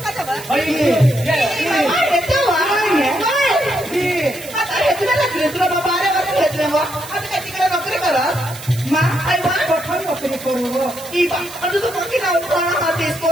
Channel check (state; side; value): noise; right; hiss, 14 dB below the sound